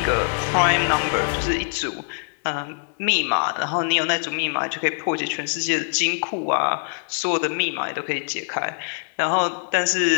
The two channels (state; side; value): silent; right; digital silence